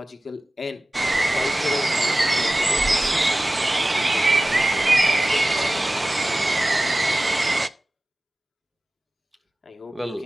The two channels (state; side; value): normal; both; correlation 0.97